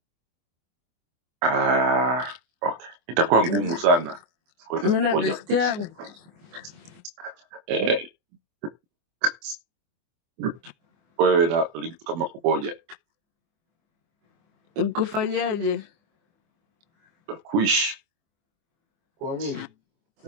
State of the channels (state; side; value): late; left; 24 ms